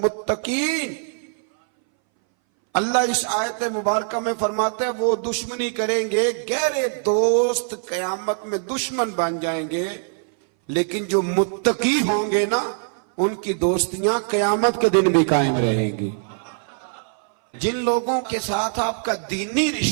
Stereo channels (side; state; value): left; silent; 61 dB below the other